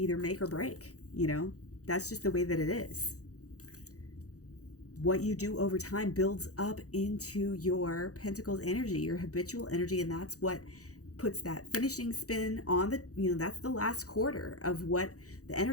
make or break, that's just the way that it is. What you do over time builds up into your pentacles energy, your habitual energy, and that's what puts that finishing spin on that's the last quarter of what the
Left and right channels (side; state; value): right; late; 0.66 ms